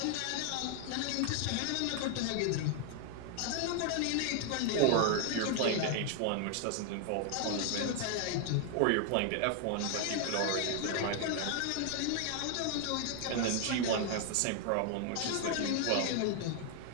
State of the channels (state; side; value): different; both; correlation 0.00